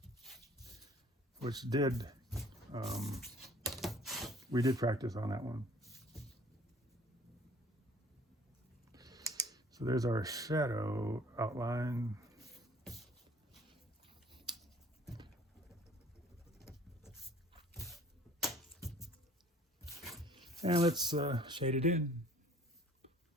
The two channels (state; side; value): normal; both; correlation 0.53